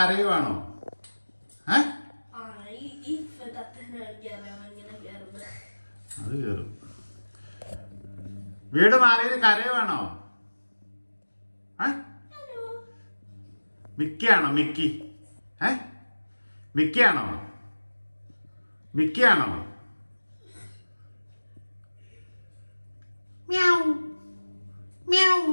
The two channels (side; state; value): both; inverted; correlation -1.00